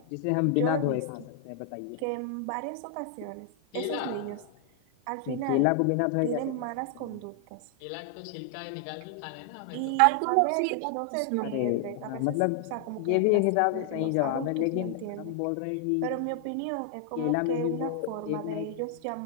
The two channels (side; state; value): both; different; correlation 0.00